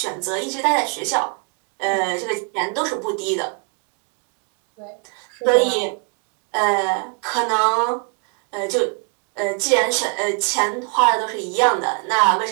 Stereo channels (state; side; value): quieter; left; 37.8 dB